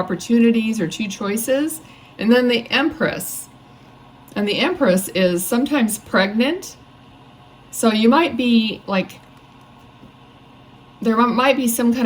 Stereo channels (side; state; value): both; identical; correlation 1.00